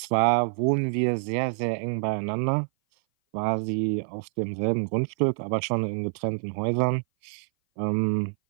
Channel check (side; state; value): left; silent; 57 dB below the other